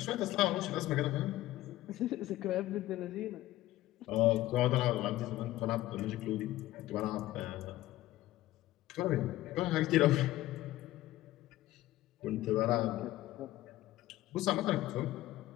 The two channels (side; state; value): right; quieter; 15.9 dB